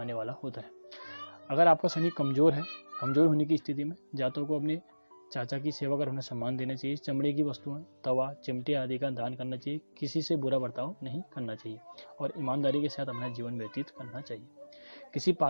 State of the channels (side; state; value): both; inverted; correlation -1.00